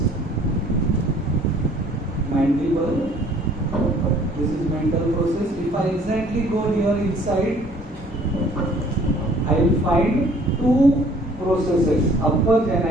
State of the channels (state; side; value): normal; both; correlation 0.56